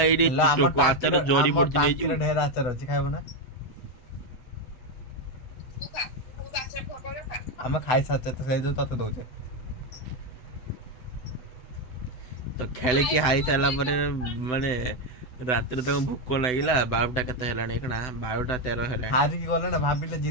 एडी टोको आचार जोड़ी पड़ची नै टाकीर ढेर आचार अछि खाइबो ना ତୁ ଖା ବହୁତ ଆଚାର ଫକରେ ଖା ଆମେ ଖାଇ ସାଚେ ତ ସେଇ जो तते दउचे तो खेले की हाई साला परे माने रात्रि तक भूख लागिला 12टा कते हेलाणी कना 12टा 13 हेलाणी हारी की गले ना भाबिले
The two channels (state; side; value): late; right; 7.9 ms